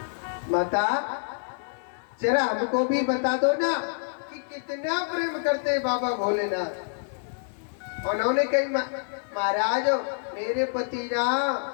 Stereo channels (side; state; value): right; silent; digital silence